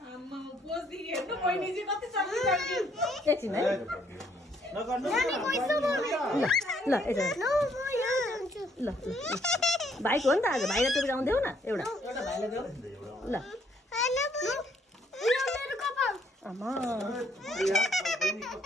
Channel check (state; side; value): normal; both; correlation 0.68